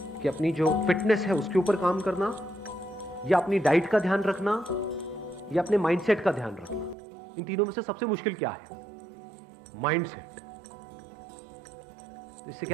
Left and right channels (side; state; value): left; drops out; at 7.0 s